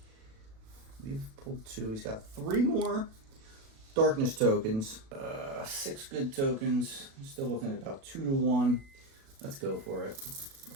We've pulled 2. He's got 3 more darkness tokens. 6 good tokens. Still looking at about 2 to 1. Let's go for it.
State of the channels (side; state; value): left; late; 37 ms